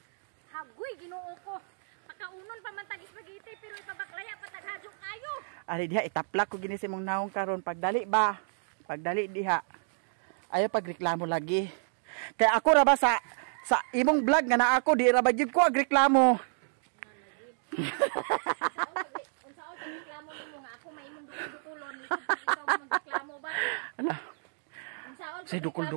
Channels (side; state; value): left; silent; digital silence